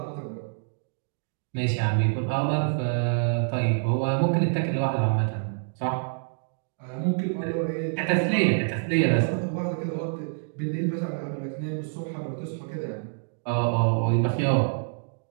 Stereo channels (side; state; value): left; silent; digital silence